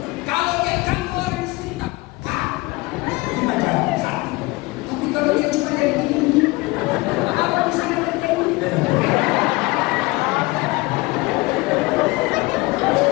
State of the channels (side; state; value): right; quieter; 23.0 dB